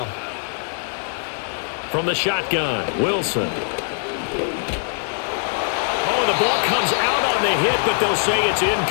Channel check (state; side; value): silent; right; digital silence